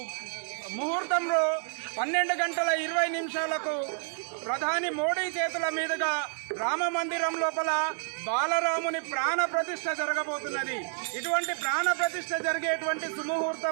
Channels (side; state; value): left; silent; 58 dB below the other